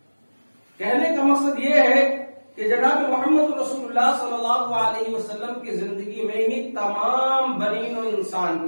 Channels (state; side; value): inverted; both; correlation -1.00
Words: کہنے کا مقصد یہ ہے کہ جناب محمد رسول اللہ صلی اللہ علیہ وسلم کی زندگی میں ہی تمام بنی و انسان